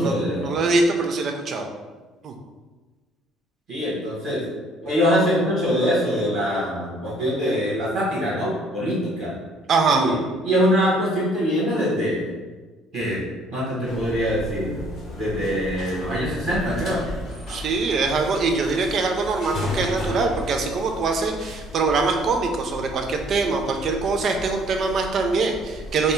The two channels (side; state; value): both; normal; correlation 0.61